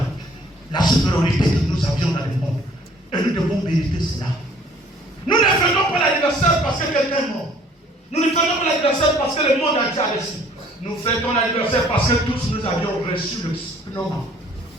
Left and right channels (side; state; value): both; normal; correlation 0.57